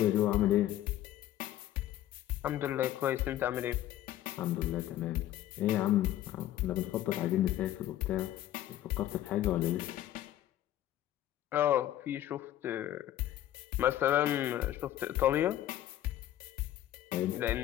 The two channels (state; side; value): quieter; right; 13.0 dB